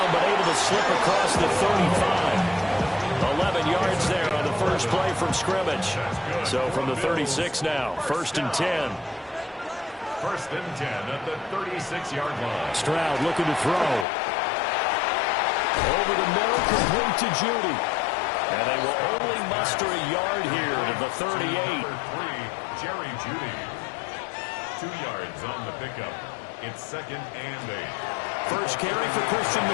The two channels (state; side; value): drops out; right; at 14.1 s